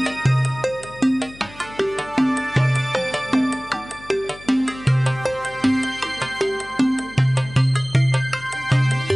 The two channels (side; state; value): left; noise; hum, 21 dB below the sound